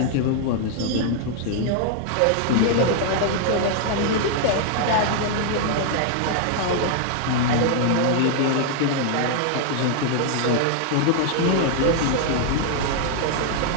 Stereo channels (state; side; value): different; both; correlation 0.00